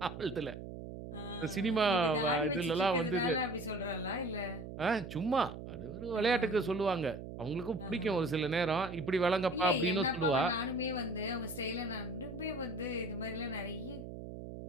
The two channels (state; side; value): noise; right; hum, 10 dB below the sound